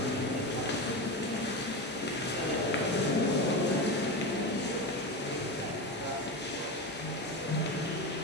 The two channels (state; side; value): normal; both; correlation 0.21